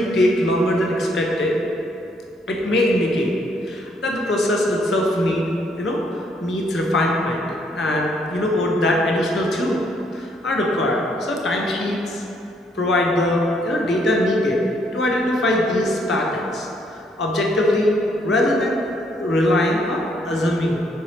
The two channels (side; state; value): both; normal; correlation 0.70